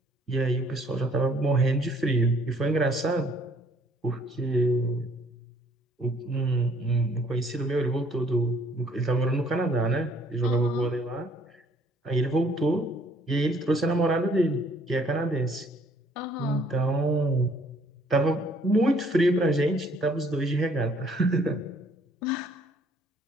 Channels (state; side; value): normal; both; correlation 0.62